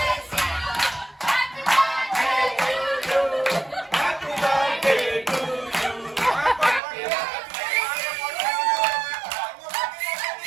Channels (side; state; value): left; drops out; at 6.8 s